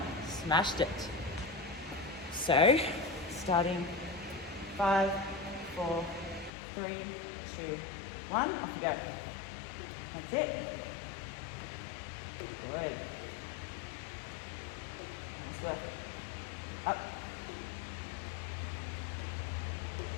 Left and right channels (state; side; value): drops out; right; at 6.5 s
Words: Smashed it. So, starting 5, 4, 3, 2, 1. Off you go. That's it. Good. Nice work. Up.